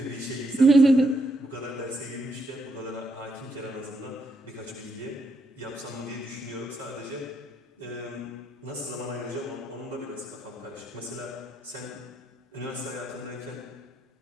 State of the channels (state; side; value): normal; both; correlation 0.77